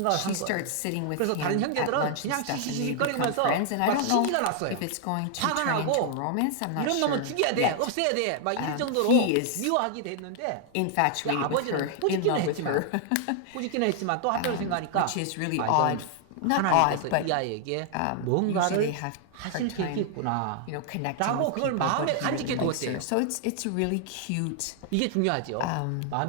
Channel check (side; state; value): both; different; correlation 0.00